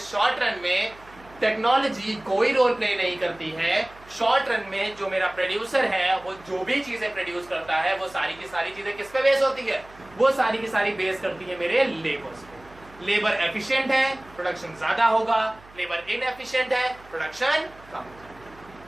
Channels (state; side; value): noise; right; hum, 24 dB below the sound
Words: शॉर्ट रन में टेक्नोलॉजी कोई रोल प्ले नहीं करती है। शॉर्ट रन में जो मेरा प्रोड्यूसर है वो जो भी चीजें प्रोड्यूस करता है वो सारी की सारी चीजें किस पे बेस होती है? वो सारी की सारी बेस करती है मेरे लेबर्स पे। लेबर एफिशिएंट है, प्रोडक्शन ज्यादा होगा। लेबर इनएफिशिएंट है, प्रोडक्शन कम होगा।